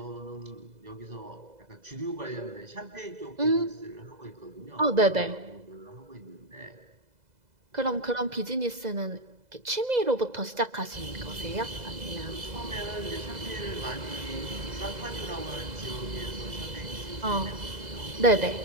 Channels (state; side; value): late; left; 2.0 ms